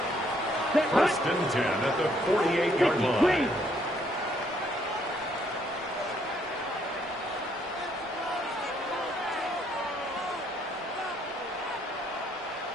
First and 10 at the 48-yard line.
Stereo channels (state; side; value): normal; both; correlation 0.69